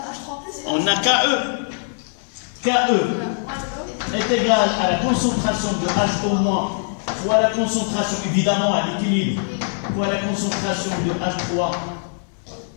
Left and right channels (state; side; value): silent; right; 64 dB below the other